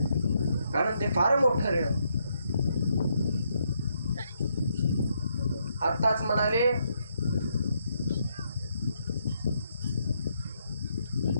कारण ते फार मोठं ऋण. आताच म्हणाले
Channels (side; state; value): both; inverted; correlation -0.76